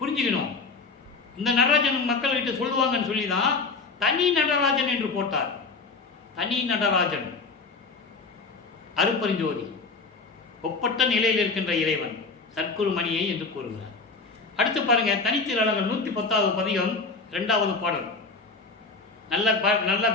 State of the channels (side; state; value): right; quieter; 4.1 dB